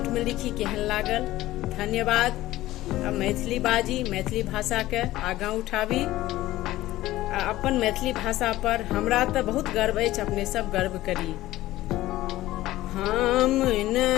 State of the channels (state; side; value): quieter; right; 16.1 dB